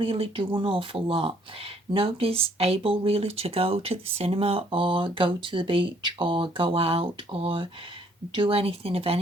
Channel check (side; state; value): both; normal; correlation 0.64